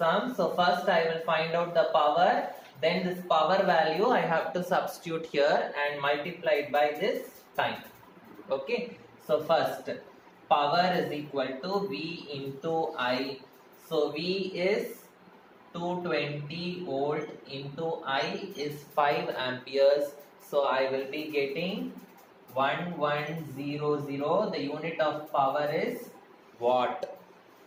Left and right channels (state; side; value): identical; both; correlation 1.00